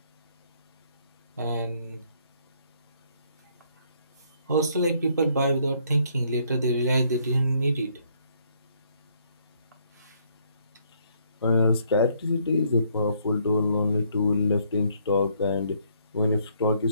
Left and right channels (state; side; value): inverted; both; correlation -0.68